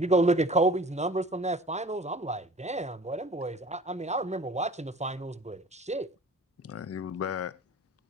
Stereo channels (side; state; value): both; normal; correlation 0.46